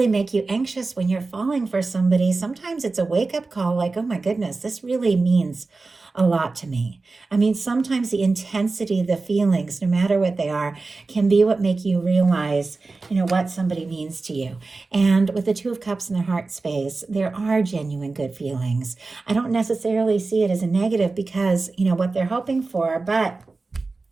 make you anxious when you're falling for somebody. Sometimes it's a wake-up call like, oh my goodness, this really means a lot to me. I mean, sometimes the intensity of the feelings, no matter what they are, can be what make you realize, what somebody means to you. And with the Two of Cups in the heart space, there are genuine good feelings. I don't necessarily see it as a negative because, what they're hoping for, but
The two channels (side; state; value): left; quieter; 3.7 dB